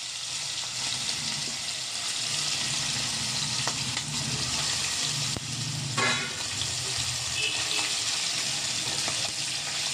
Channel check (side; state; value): both; identical; correlation 1.00